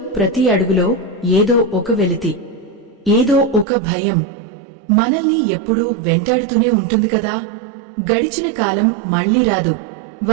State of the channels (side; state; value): left; drops out; at 3.7 s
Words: ప్రతి అడుగులో ఏదో ఒక వెలితి, ఏదో ఒక భయం మనల్ని ఎప్పుడూ వెంటాడుతూనే ఉంటుంది కదా. గడిచిన కాలం మళ్లీ రాదు,